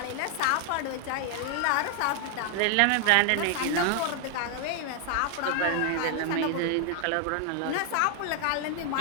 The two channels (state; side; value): different; both; correlation 0.00